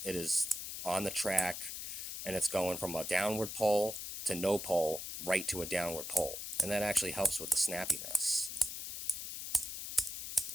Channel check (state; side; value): noise; left; hiss, 6 dB below the sound